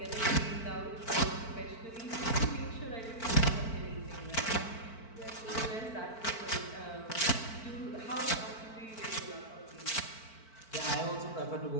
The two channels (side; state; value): right; late; 4.5 ms